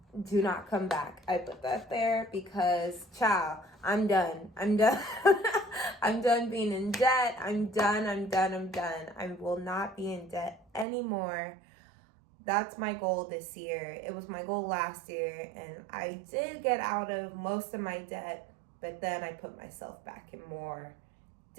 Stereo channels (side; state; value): left; drops out; at 10.9 s